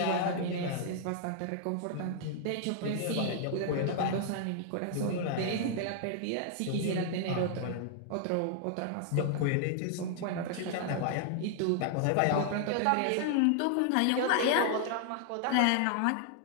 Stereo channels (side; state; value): both; different; correlation 0.00